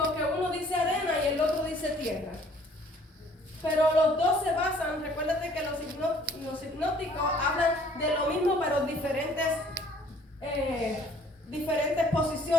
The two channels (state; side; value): normal; both; correlation 0.57